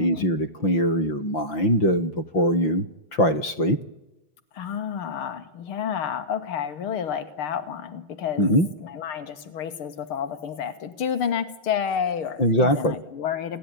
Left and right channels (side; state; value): right; late; 6.6 ms